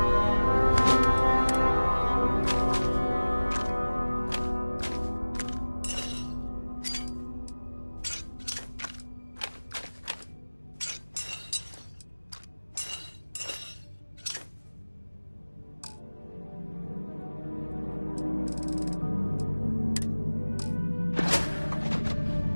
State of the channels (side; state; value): both; inverted; correlation -1.00